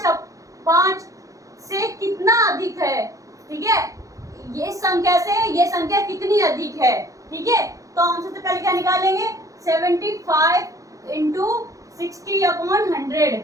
से कितना अधिक है। ठीक है, ये संख्या से ये संख्या कितनी अधिक है। ठीक है, तो हम सबसे पहले क्या निकालेंगे, 75 इंटू 60/100।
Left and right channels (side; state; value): left; late; 0.16 ms